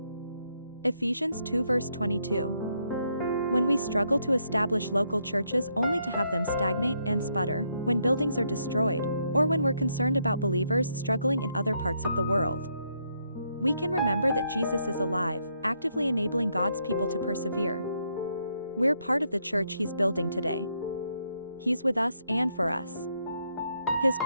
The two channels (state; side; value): inverted; both; correlation -0.76